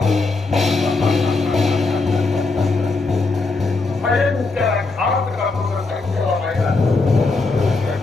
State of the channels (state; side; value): quieter; right; 3.7 dB